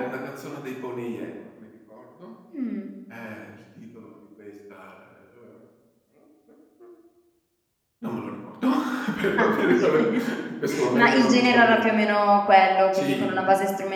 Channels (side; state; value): both; identical; correlation 1.00